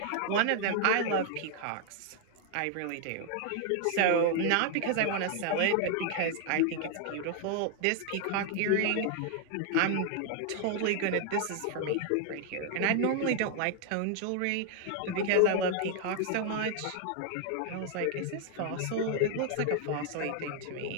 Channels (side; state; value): both; different; correlation 0.00